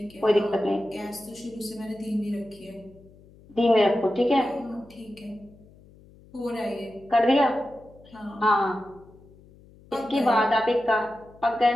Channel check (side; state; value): left; noise; hum, 25 dB below the sound